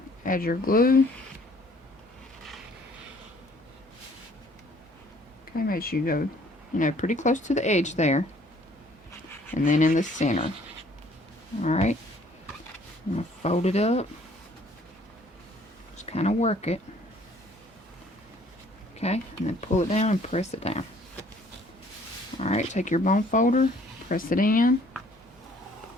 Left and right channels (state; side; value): normal; both; correlation 0.58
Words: Add your glue. Okay, make sure you go, you know, pretty close to the edge there, and then in the center. Alright, I'm going to fold it up. Just kind of work it. Okay, and then pull it down and press it down. Alright, take your bone folder, press it in.